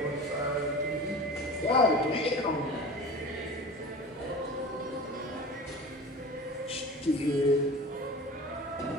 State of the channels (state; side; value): normal; both; correlation 0.35